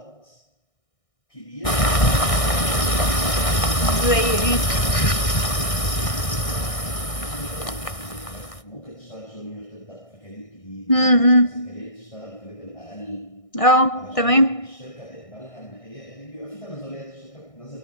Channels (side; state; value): right; late; 1.6 ms